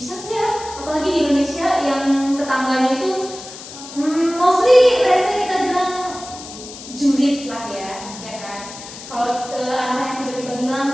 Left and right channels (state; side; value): noise; left; hiss, 14 dB below the sound